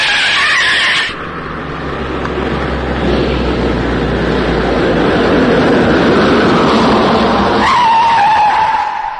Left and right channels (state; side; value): identical; both; correlation 1.00